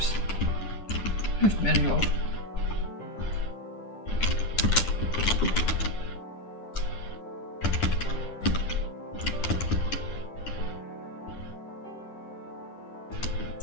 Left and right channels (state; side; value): late; right; 9.9 ms